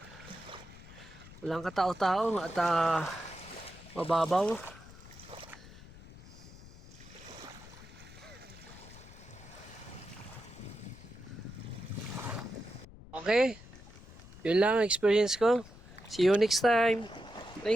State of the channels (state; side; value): noise; left; rumble, 18 dB below the sound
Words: Walang katao-tao at mababaw. Okay, yun lang ang experience ko. See you next time.